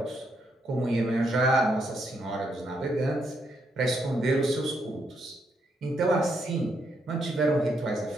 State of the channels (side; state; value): both; normal; correlation 0.77